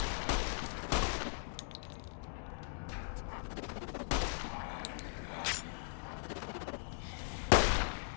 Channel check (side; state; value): right; silent; digital silence